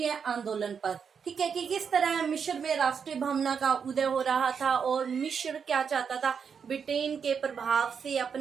आंदोलन पर। ठीक है कि किस तरह मिस्र में राष्ट्रीय भावना का उदय हो रहा था और मिस्र क्या चाहता था, ब्रिटेन के प्रभाव से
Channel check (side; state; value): left; quieter; 6.6 dB